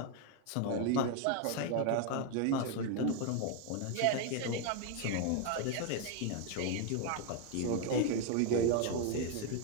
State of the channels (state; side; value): different; both; correlation 0.01